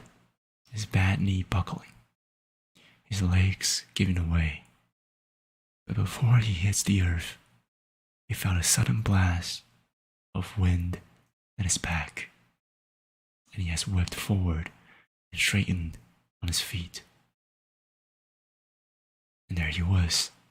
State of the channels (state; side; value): identical; both; correlation 1.00